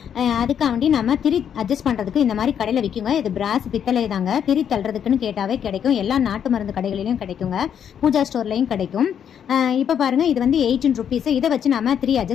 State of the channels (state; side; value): quieter; right; 8.6 dB